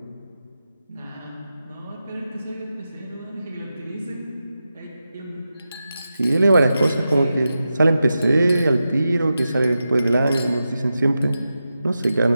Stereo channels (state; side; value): inverted; both; correlation -0.91